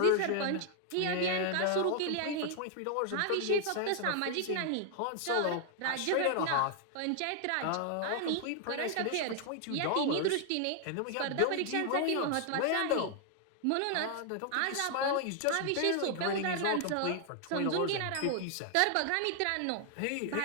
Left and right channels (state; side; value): different; both; correlation 0.00